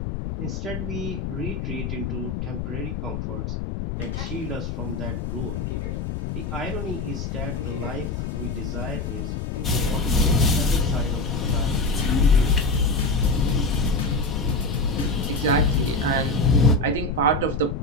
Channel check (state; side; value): noise; left; rumble, 4 dB below the sound